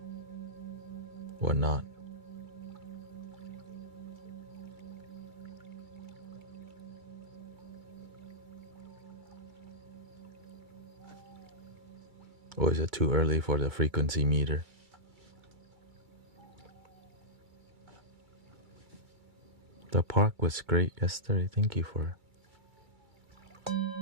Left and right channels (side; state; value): left; late; 2.3 ms